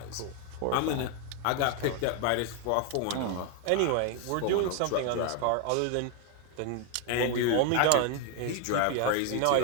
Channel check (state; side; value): different; both; correlation 0.01